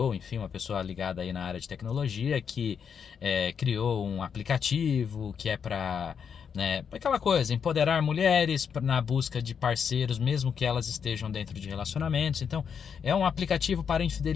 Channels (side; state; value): right; quieter; 7.1 dB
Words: enfim, uma pessoa ligada aí na área de tecnologia, que criou um aplicativo que é para, aquela coisa, empoderar mulheres na busca de parceiros, mesmo que elas estejam dentro de relacionamentos. Então, é um aplicativo para